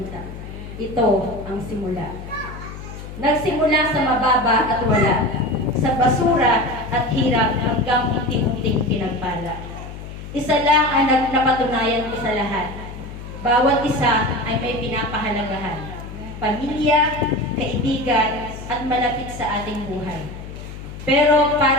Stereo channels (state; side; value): noise; left; hum, 12 dB below the sound